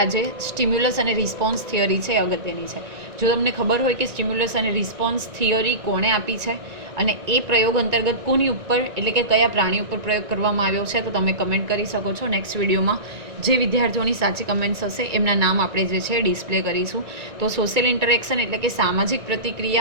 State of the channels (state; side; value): late; left; 1.9 ms